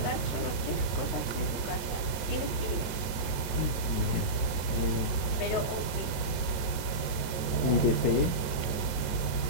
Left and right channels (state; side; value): late; right; 22 ms